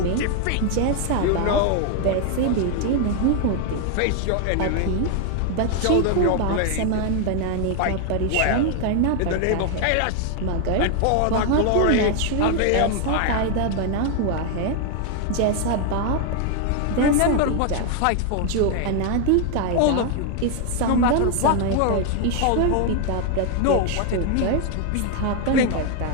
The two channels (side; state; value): both; different; correlation 0.00